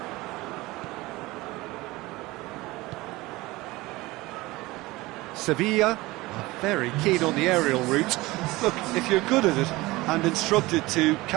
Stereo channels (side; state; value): left; quieter; 20.4 dB